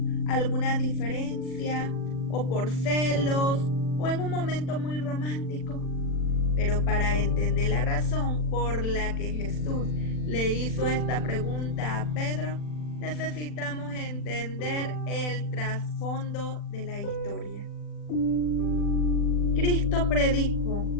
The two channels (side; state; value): right; late; 40 ms